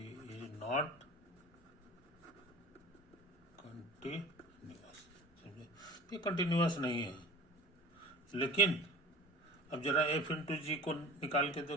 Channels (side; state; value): both; normal; correlation 0.40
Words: is not continuous. समझे? ये कंटिन्यूअस नहीं है। लेकिन अब जरा एफ इंटू जी को निकाल के